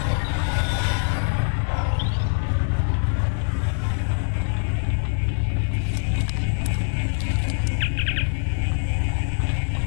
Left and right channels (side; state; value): right; silent; 63 dB below the other